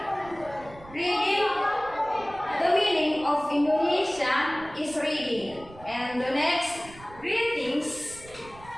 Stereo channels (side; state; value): right; noise; rumble, 20 dB below the sound